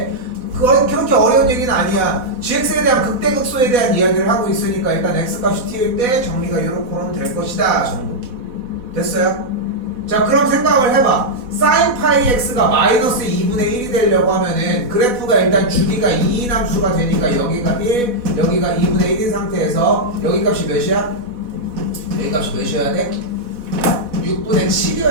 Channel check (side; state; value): left; late; 4.1 ms